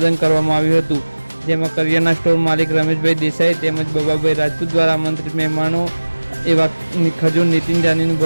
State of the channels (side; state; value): both; inverted; correlation -1.00